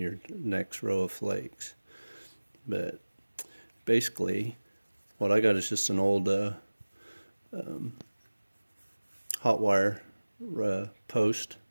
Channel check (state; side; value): inverted; both; correlation -1.00